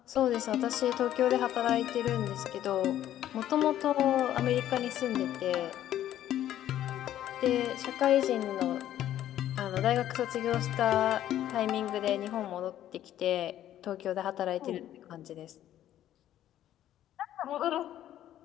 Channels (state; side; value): quieter; right; 12.1 dB